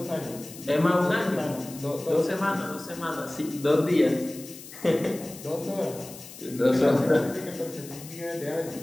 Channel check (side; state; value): left; noise; hiss, 16 dB below the sound